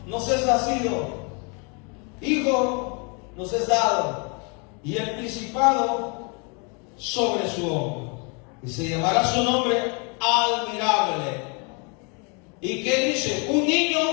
nos es nacido, hijo nos es dado, y el principado sobre su hombro, y se llamará su nombre Admirable. ¿Y qué dice? Un niño,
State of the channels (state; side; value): quieter; right; 34.3 dB